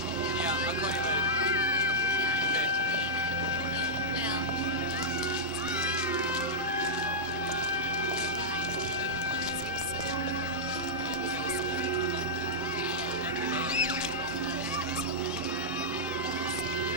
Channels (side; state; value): both; normal; correlation -0.10